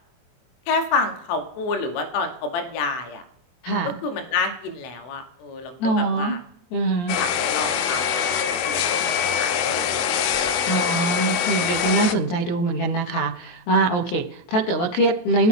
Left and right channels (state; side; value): late; right; 24 ms